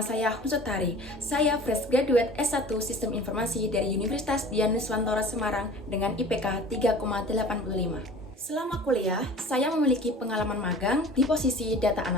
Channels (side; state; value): both; normal; correlation 0.42